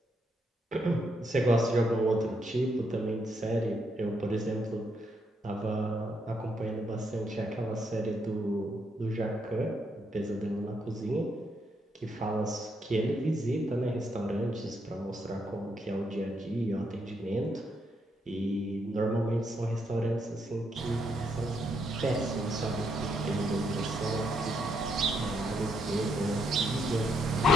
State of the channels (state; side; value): normal; both; correlation 0.77